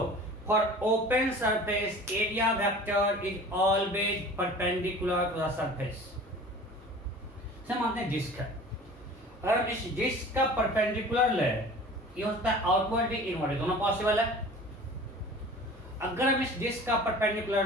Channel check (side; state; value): both; normal; correlation 0.42